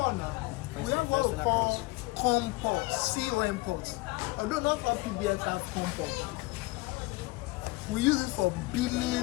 now. We have what we call COM port, COM port. Although not all PBX have COM port. We use it for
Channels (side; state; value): right; quieter; 22.8 dB